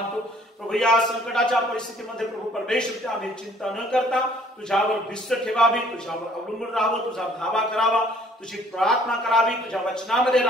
प्रभू या संकटाच्या परिस्थितीमध्ये प्रभू परमेश्वर आम्ही चिंता न करता तुझ्यावर भिस्त ठेवावी, तुझ्यावर अवलंबून राहावं, तुझा धावा करावा, तुझी प्रार्थना करावी, तुझ्या वचनामध्ये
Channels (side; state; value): both; normal; correlation 0.58